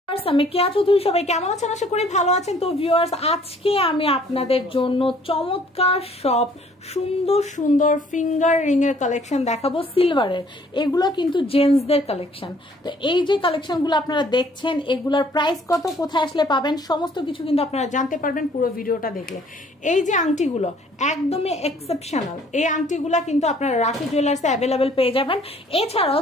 আমি কেয়া চৌধুরী, সবাই কেমন আছেন? আশা করি ভালো আছেন। তো ভিউয়ার্স, আজকে আমি আপনাদের জন্য চমৎকার সব সুন্দর সুন্দর ফিঙ্গার রিং এর কালেকশন দেখাবো সিলভারের। এগুলো কিন্তু জেন্টসদের কালেকশন। তো এই যে কালেকশনগুলো আপনারা দেখছেন, এগুলোর প্রাইস কত, কোথায় আসলে পাবেন, সমস্ত কিছু কিন্তু আপনারা জানতে পারবেন পুরো ভিডিওটা দেখলে। এই যে আংটিগুলো একদমই এক্সেপশনাল, এই আংটিগুলো কিন্তু আপনারা রাখি জুয়েলার্সে অ্যাভেলেবেল পেয়ে যাবেন। এছাড়াও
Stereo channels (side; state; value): both; normal; correlation 0.59